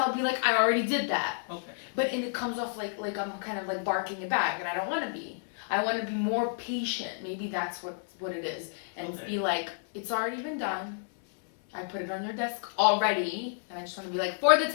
be like, I already did that. Okay. But and it comes off like I'm kind of like barking it back, and I don't want to be. I want to be more patient. Maybe that's what it is. And be like, it's already been done. I put it on your desk already. And I just want to be like, for the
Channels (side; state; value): right; silent; 58 dB below the other